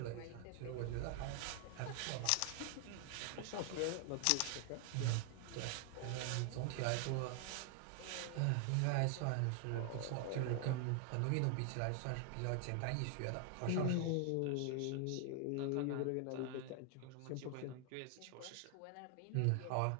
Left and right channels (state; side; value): different; both; correlation 0.00